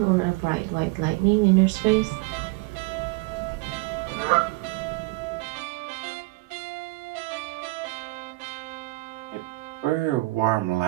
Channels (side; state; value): left; quieter; 22.9 dB